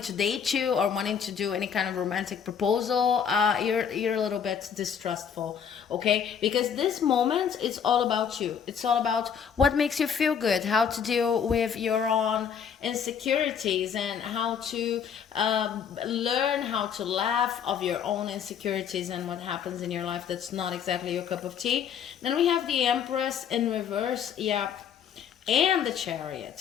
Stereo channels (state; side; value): quieter; right; 7.6 dB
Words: to date you or wanting to do any kind of romantic proposal. You're a little bit distrustful, okay? Because this moment is all about you. It's all about what makes you feel good, how to deal with your own insecurities, and how to learn how to laugh of your own insecurities and what happens in your life that's not exactly your cup of tea. Then we have the Empress in reverse, yeah, and the Chariot.